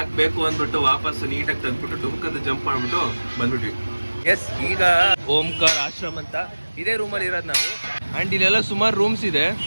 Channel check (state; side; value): inverted; both; correlation -1.00